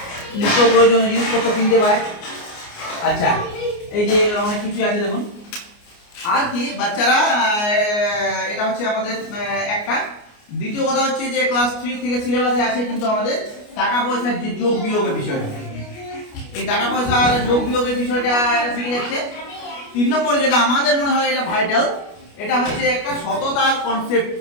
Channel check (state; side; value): late; right; 29 ms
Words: নিত্য প্রয়োজনীয় জিনিসপত্র কিনতে পায়। আচ্ছা, এই যে অনেক কিছু আছে দেখুন। আর কি বাচ্চারা এটা হচ্ছে আমাদের একটা। দ্বিতীয় কথা হচ্ছে যে ক্লাস 3 থেকে সিলেবাসে আছে কিন্তু আমাদের টাকা পয়সার যে যোগ বিয়োগের বিষয়টা, এই টাকা পয়সার যোগ বিয়োগের বিষয়টা এটা শিখে যাচ্ছে। 3 নম্বর যেটা আমাদের মনে হয় এটা ভাইটাল, এটা হচ্ছে একটা সততার কনসেপ্ট